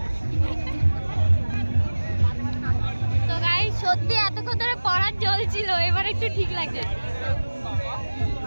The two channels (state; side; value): inverted; both; correlation -1.00